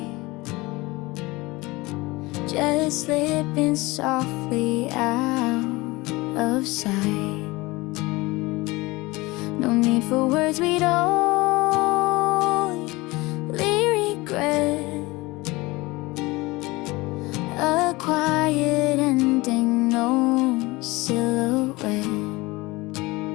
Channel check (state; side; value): quieter; right; 22.2 dB